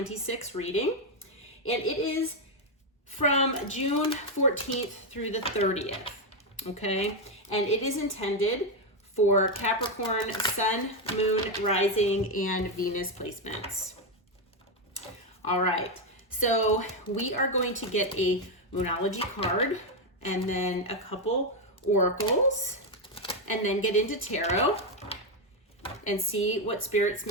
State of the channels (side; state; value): both; normal; correlation 0.05